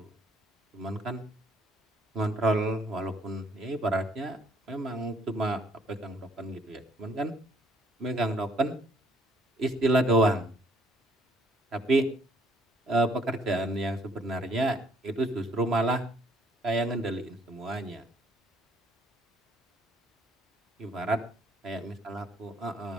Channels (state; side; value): normal; both; correlation 0.64